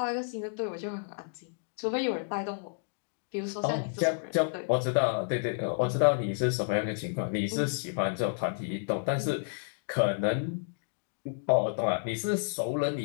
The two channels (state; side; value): silent; right; digital silence